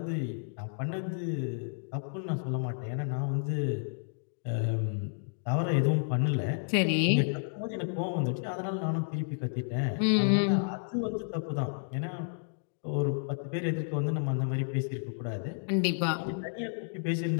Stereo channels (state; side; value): silent; right; digital silence